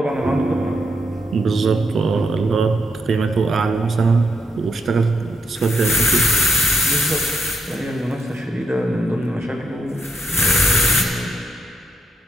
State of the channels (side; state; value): both; normal; correlation 0.77